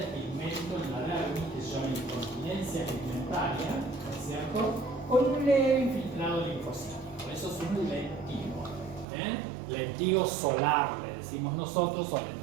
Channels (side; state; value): left; drops out; at 9.1 s